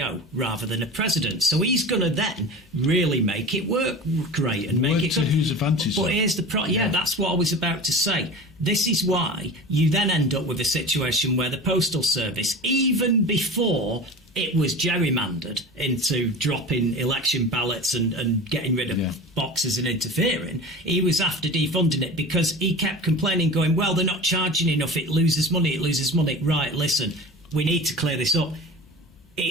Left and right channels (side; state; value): both; normal; correlation 0.34